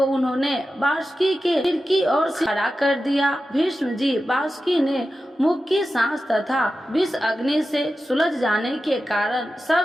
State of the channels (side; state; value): both; normal; correlation 0.92